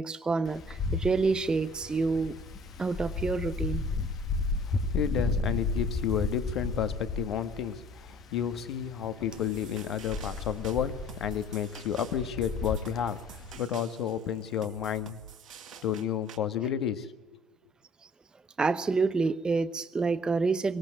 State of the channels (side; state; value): both; normal; correlation 0.53